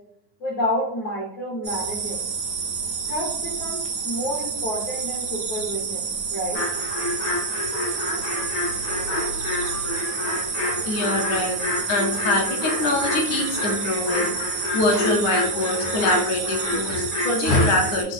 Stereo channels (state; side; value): late; right; 9.4 ms